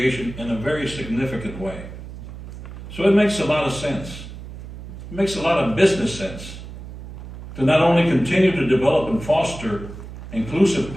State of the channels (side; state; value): right; noise; hum, 13 dB below the sound